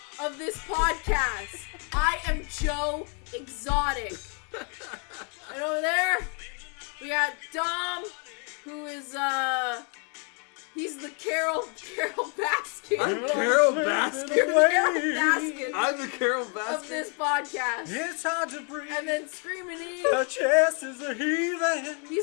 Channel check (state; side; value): quieter; right; 37.9 dB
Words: of this podcast. I am Joe Exotic. And over there, we got Dom, who is, he's the Carol Baskin. I'm Carol Baskin. You're Carol Baskin I'm the Carol Baskin of this podcast. It's hard to breathe. And then Screamin E. Her chest is a heathen.